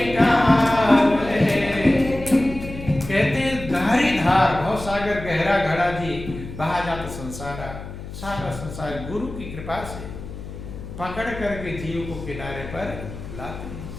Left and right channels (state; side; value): noise; left; hum, 11 dB below the sound